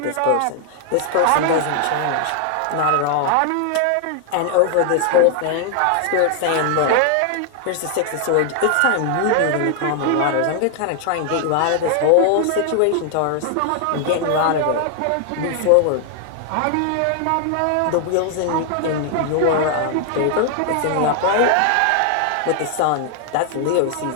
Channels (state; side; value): different; both; correlation 0.00